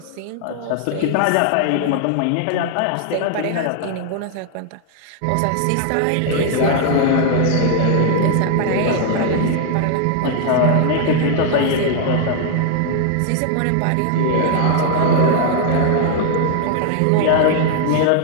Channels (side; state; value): both; different; correlation 0.00